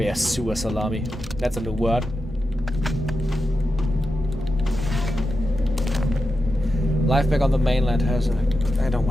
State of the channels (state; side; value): normal; both; correlation 0.89